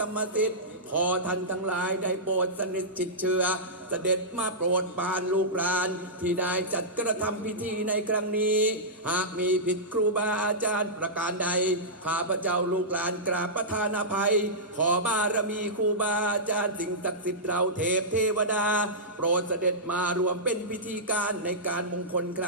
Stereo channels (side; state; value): both; normal; correlation -0.14